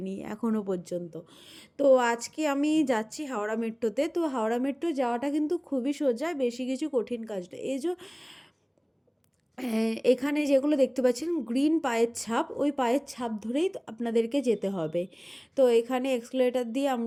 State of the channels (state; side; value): identical; both; correlation 1.00